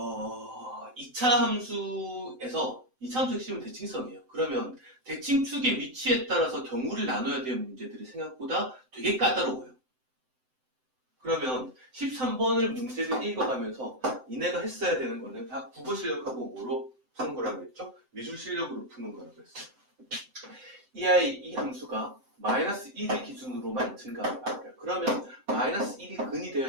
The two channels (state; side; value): late; left; 7.8 ms